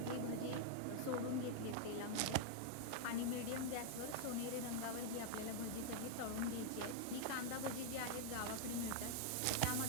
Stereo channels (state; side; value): different; both; correlation 0.00